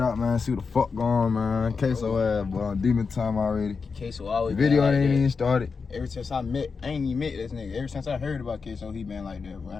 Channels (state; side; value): quieter; right; 5.1 dB